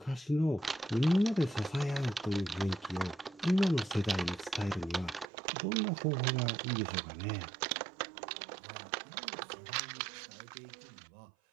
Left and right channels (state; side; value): drops out; left; at 5.2 s